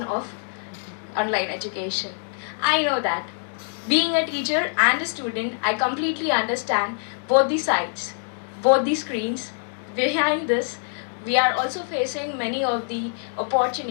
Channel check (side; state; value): right; silent; 62 dB below the other